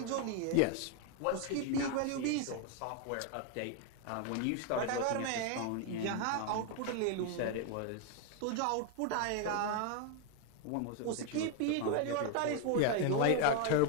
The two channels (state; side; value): different; both; correlation 0.01